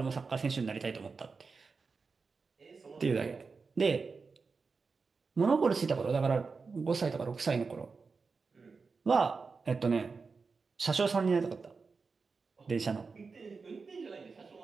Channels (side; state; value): left; quieter; 4.7 dB